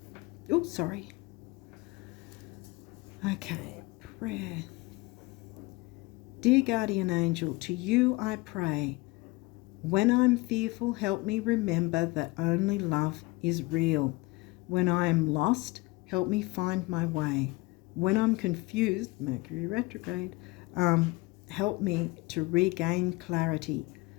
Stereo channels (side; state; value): right; quieter; 23.0 dB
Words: Oh, sorry. Okay, prayer. Dear guardian angel, to you I pray. When I'm fearful, help me remember that only love is real. When I am lost, help me find my way. When I'm confused, Mercury retrograde, help me to regain clarity.